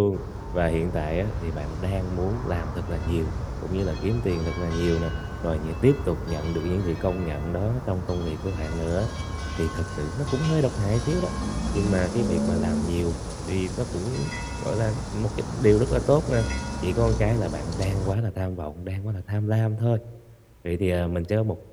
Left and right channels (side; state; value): both; identical; correlation 1.00